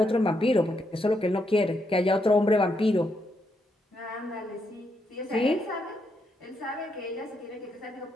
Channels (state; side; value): normal; both; correlation 0.79